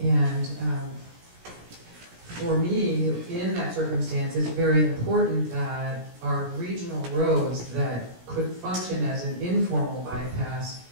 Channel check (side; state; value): left; late; 17 ms